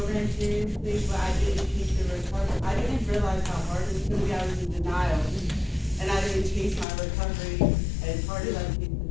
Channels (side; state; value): right; drops out; at 6.9 s